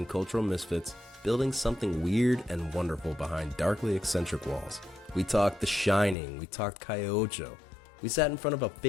cultural misfits, building something weird and wonderful behind darkly eccentric walls. We talked The Shining, we talked Calle Ocho. We sat in front of a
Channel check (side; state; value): right; drops out; at 6.2 s